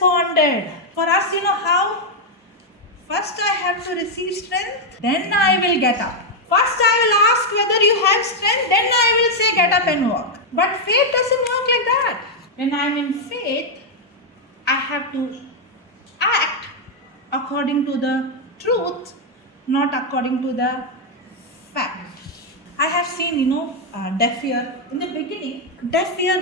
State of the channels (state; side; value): normal; both; correlation 0.00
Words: For us, you know how? First I have to receive strength, then I will get up. First I will ask whether you have strength, then I will say get up and walk. But faith doesn't work like that. When I am in faith, I have to act according to the truth, not according to the fact. I have seen, deaf ear. In the beginning, deaf